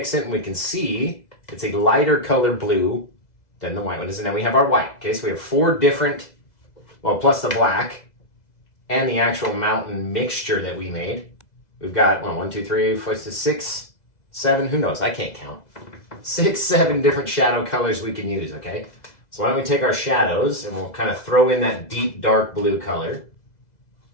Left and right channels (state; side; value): late; right; 2.0 ms